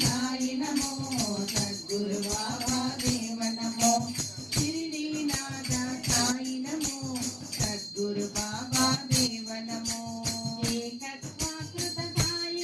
నమో సద్గురు బాబా దేవ నమో షిరిడీనాథ సాయి నమో సద్గురు బాబా దేవ నమో ఏకత్వాకృత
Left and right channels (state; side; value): identical; both; correlation 1.00